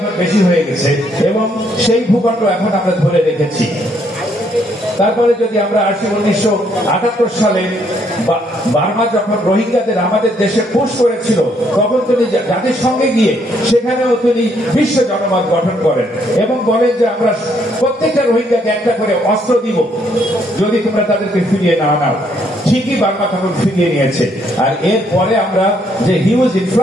বেশি হয়ে গেছে এবং সেই ভূখণ্ড এখন আমরা ধরে রেখেছি। তারপরে যদি আমরা আসি 1978 সালে বার্মা যখন রোহিঙ্গাদের আমাদের দেশে পুশ করেছিল, তখন তিনি জাতিসংঘে গিয়ে সেখানেও তিনি বিশ্ব জনমত গঠন করেন এবং বলেন যে আমরা প্রত্যেকটা রোহিঙ্গাকে একটা করে অস্ত্র দিব যদি তোমরা তাদেরকে ফিরিয়ে না নাও। ঠিকই বার্মা তখন ফিরিয়ে নিয়েছে। আর এরপরে আমরা যে huge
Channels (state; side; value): normal; both; correlation 0.70